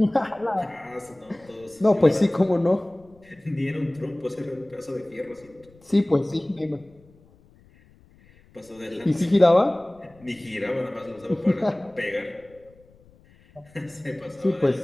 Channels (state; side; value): noise; left; rumble, 28 dB below the sound